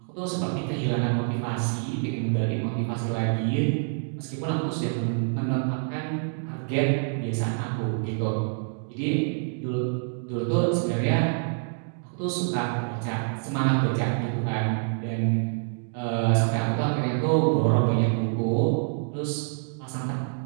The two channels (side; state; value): left; silent; 60 dB below the other